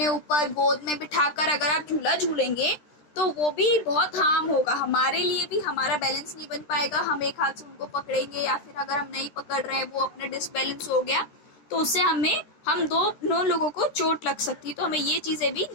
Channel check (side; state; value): right; late; 13 ms